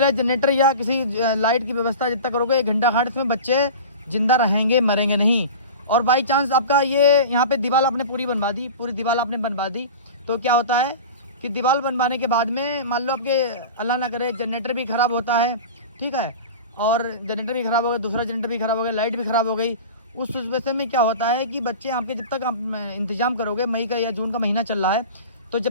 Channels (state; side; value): inverted; both; correlation -0.33